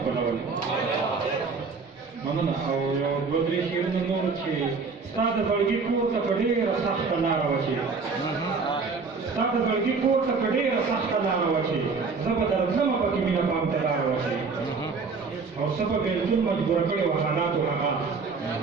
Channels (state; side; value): quieter; left; 4.7 dB